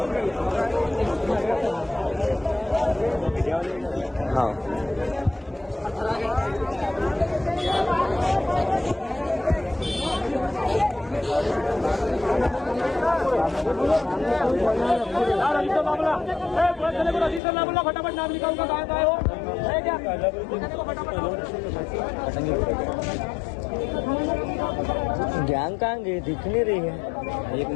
हाँ यार रजिस्टर ला बोला, पुलिस वाले को रजिस्टर ला बोला, फटाफट नाम लिखा उनका कहाँ हो, है क्या? पुलिस को फटाफट गैंग कहाँ गई? दिख नहीं रही है। एक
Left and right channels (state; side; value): drops out; right; at 17.4 s